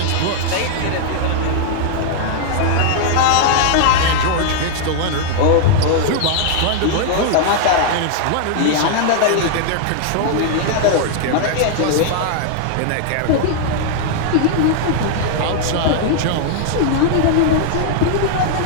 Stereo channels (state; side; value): different; both; correlation -0.01